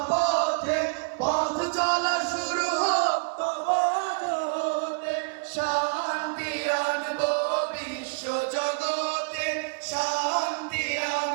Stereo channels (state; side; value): quieter; left; 37.2 dB